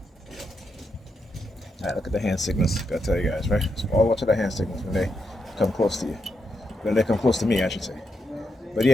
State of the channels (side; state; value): both; normal; correlation 0.83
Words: Alright, look at the hand signals. Gotta tell you guys, right? So all watch the hand signals when they come close to you. When they come close to me, I should say. But